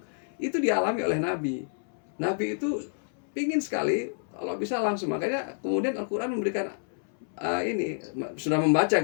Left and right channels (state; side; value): silent; right; 59 dB below the other